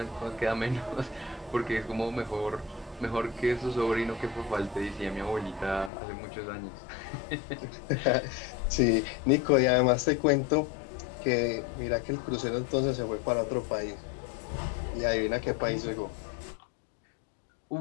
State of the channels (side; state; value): right; drops out; at 5.9 s